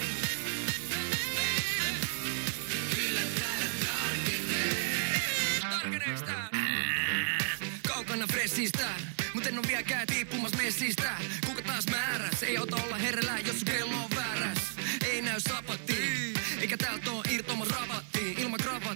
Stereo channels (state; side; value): silent; left; digital silence